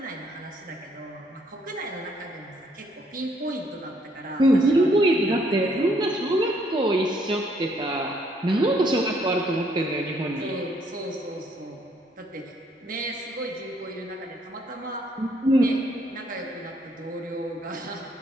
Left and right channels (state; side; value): normal; both; correlation 0.68